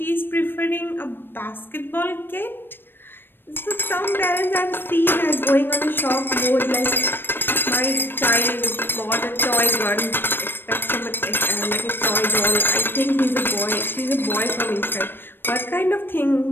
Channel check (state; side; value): late; right; 0.098 ms